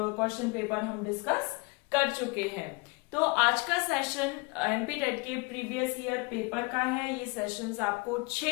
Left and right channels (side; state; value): right; quieter; 27.4 dB